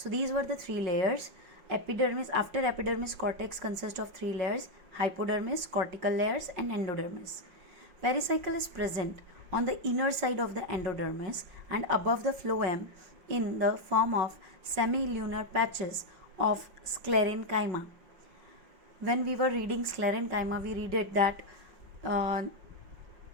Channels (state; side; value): late; left; 5.5 ms